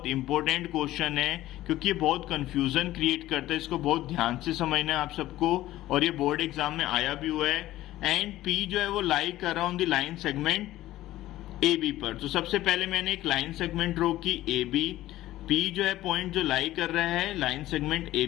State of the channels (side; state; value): right; quieter; 15.3 dB